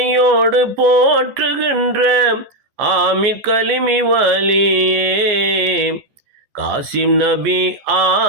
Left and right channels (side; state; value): left; late; 14 ms